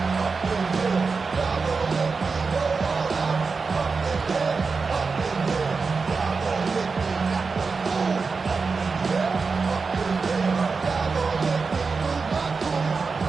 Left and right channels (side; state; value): left; quieter; 4.6 dB